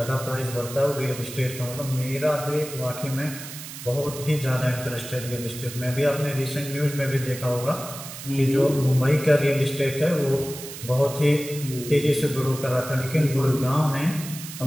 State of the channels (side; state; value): right; noise; hiss, 11 dB below the sound